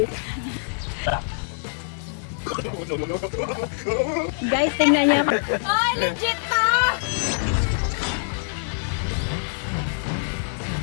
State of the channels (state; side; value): silent; right; digital silence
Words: Guys, tingnan niyo. Ay, legit to!